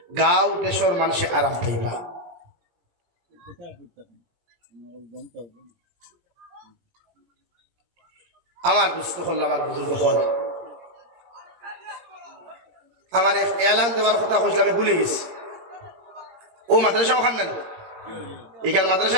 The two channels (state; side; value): late; left; 17 ms